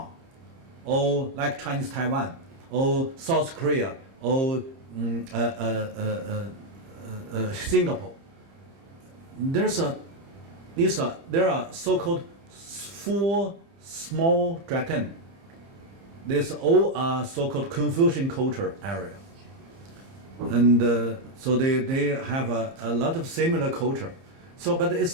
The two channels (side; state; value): left; late; 30 ms